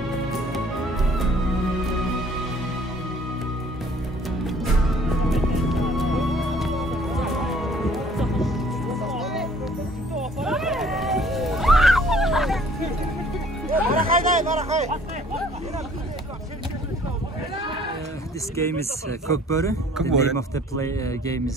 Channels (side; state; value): both; normal; correlation 0.56